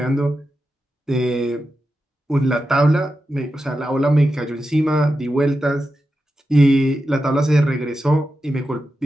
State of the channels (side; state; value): both; normal; correlation 0.90